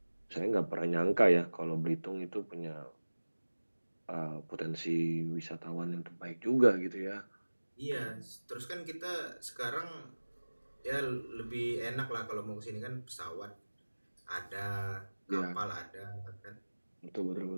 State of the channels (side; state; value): both; inverted; correlation -1.00